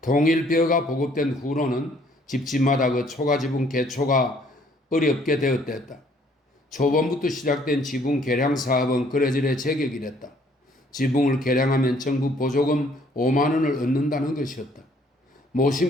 보급된 후로는 집집마다 그 초가지붕 개초가 어렵게 되었댔다. 초반부터 시작된 지붕 개량 사업은 그래저래 제격이랬다. 지붕을 개량하면 정부 보조금 5만 원을 얻는다는 것이었다.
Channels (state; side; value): normal; both; correlation 0.62